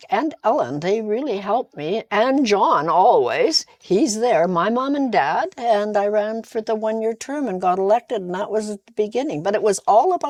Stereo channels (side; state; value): both; identical; correlation 1.00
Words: and Ellen, they really helped me, and John always. He's there, my mom and dad, and I ran for the 1 year term and got elected, and that was at the beginning. But it was all